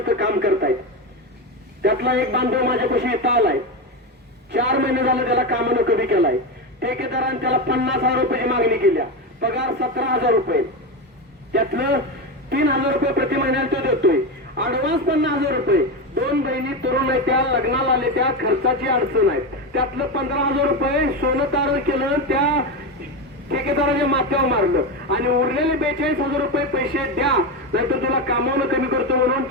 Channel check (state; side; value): normal; both; correlation 0.15